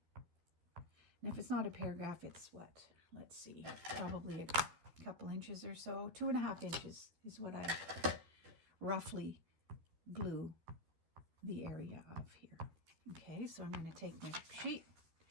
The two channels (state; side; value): late; left; 13 ms